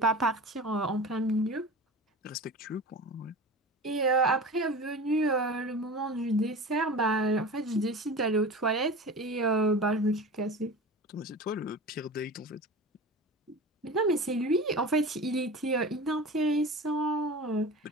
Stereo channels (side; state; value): both; normal; correlation 0.34